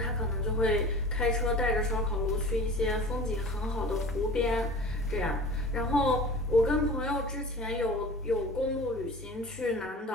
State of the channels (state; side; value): normal; both; correlation 0.40